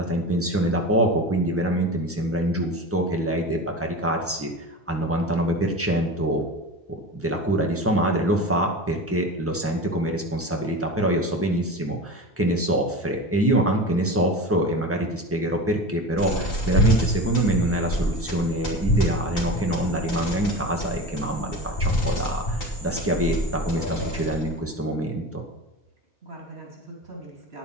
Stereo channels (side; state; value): both; normal; correlation 0.30